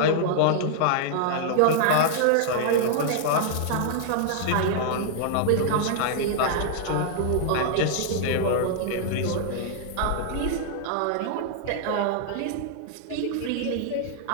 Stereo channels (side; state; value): both; different; correlation -0.01